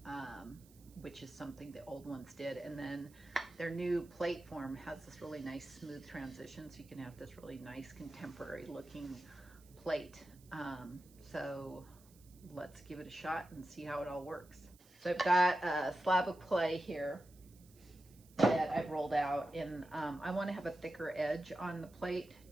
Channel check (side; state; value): right; noise; hiss, 26 dB below the sound